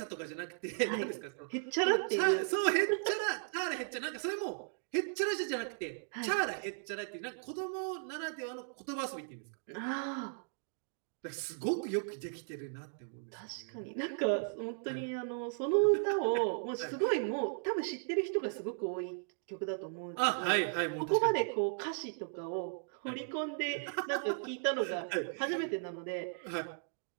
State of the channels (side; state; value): left; silent; digital silence